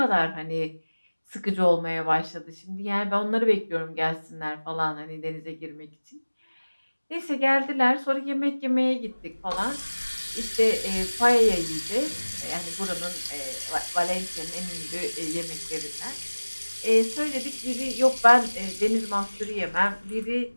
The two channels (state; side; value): inverted; both; correlation -1.00